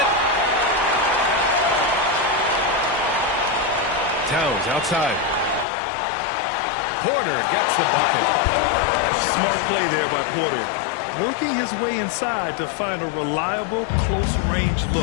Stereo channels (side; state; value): right; drops out; at 5.7 s